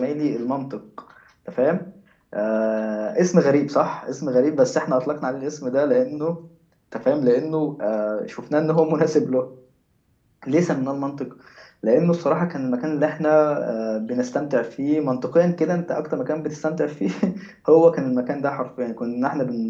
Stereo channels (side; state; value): both; identical; correlation 1.00